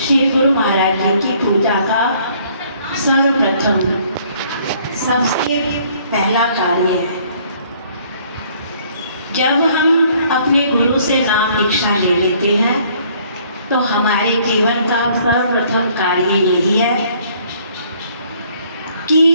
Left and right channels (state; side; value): inverted; both; correlation -0.61